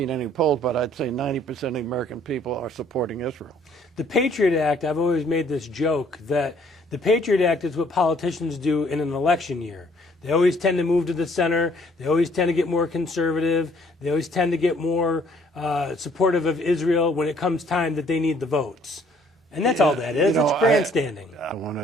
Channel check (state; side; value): normal; both; correlation 0.62